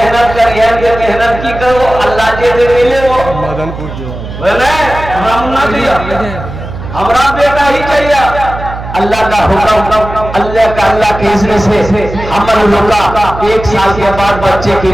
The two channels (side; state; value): right; noise; hum, 10 dB below the sound